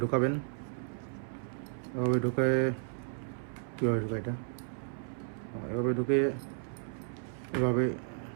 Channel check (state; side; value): silent; left; 55 dB below the other